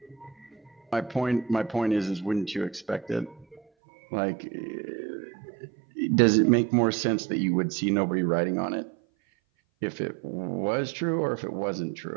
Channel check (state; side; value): drops out; left; at 3.6 s